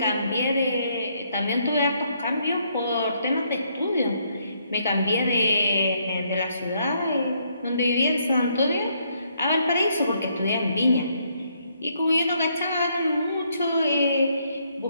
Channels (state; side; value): inverted; both; correlation -0.72